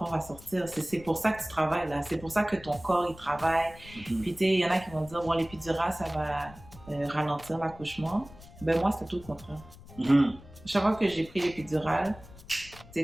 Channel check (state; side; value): noise; left; rumble, 19 dB below the sound